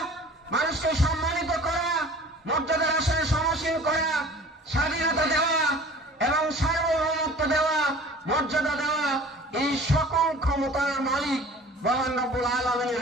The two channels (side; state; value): both; normal; correlation 0.45